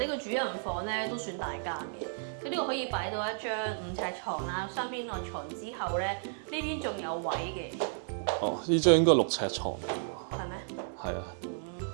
個主人房咧都算大間嘅，佢呢度可以擺到一張5尺床啦，雙邊內床之後咧，呢邊仲有位嘅。哦，呢張應該6尺床。係咩？係啊。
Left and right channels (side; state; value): left; silent; digital silence